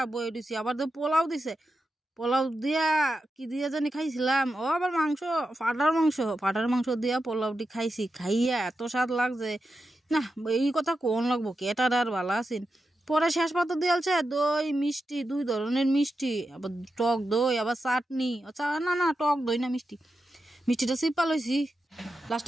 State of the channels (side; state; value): both; normal; correlation 0.89